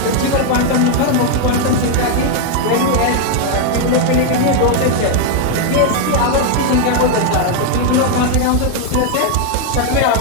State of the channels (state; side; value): different; both; correlation 0.00